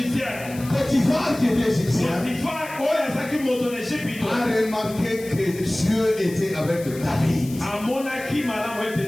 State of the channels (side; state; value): left; noise; hiss, 17 dB below the sound